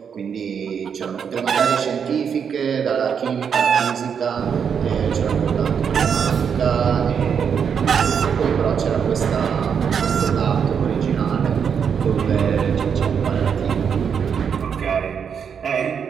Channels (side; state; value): left; quieter; 7.1 dB